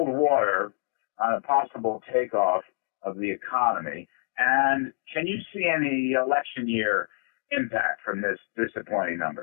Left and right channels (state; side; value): silent; right; digital silence